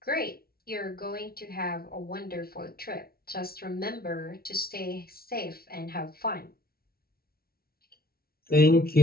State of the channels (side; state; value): right; late; 0.44 ms